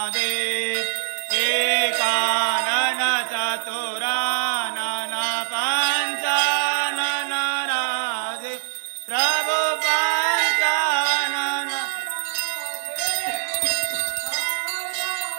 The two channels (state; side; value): silent; left; digital silence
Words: एकानन चतुरानन पंचानन राधे प्रभु पंचानन।